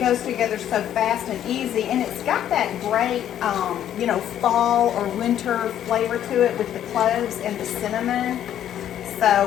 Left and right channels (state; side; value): quieter; right; 10.7 dB